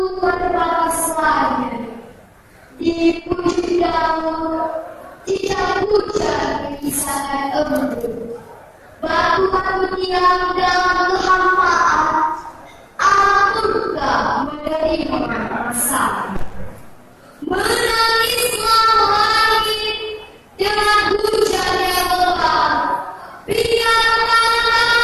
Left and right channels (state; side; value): identical; both; correlation 1.00